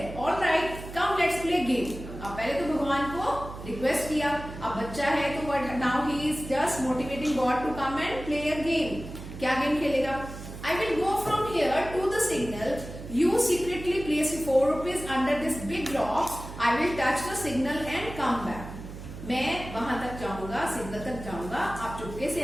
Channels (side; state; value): right; noise; hum, 12 dB below the sound